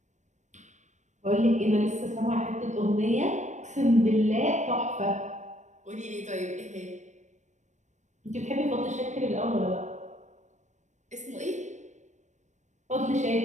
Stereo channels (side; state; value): left; late; 0.34 ms